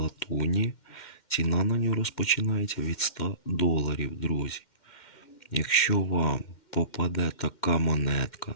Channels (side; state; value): right; late; 2.1 ms